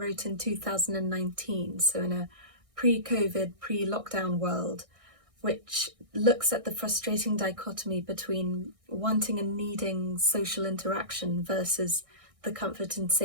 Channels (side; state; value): left; late; 1.6 ms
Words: in 2019, so in a pre-COVID, pre-lockdown world, which looks at the frustrating dichotomy between wanting and needing social interaction versus the comfort and